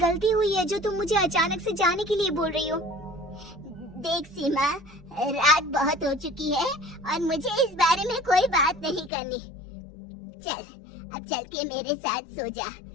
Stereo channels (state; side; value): drops out; right; at 9.1 s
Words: हुई है जो तुम मुझे अचानक से जाने के लिए बोल रही हो? देख सीमा, रात बहुत हो चुकी है और मुझे इस बारे में कोई बात नहीं करनी। चल, अब चल के मेरे साथ सो जा।